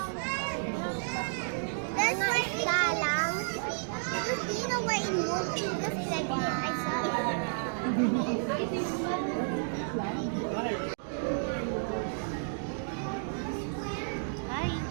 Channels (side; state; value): left; silent; digital silence